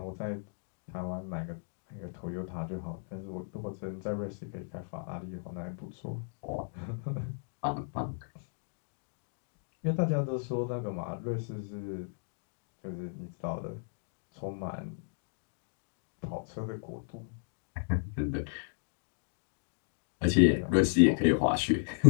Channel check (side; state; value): right; silent; digital silence